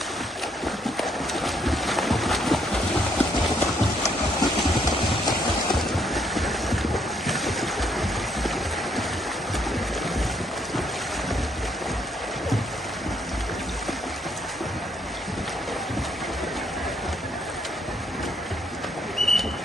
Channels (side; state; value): both; normal; correlation 0.70